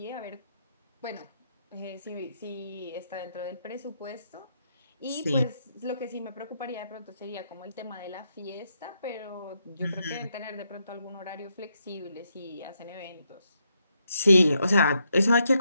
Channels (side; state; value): both; inverted; correlation -0.79